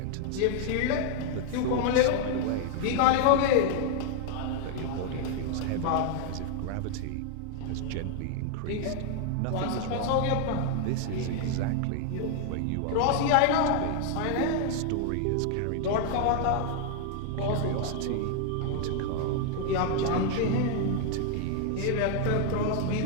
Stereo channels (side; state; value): both; different; correlation 0.00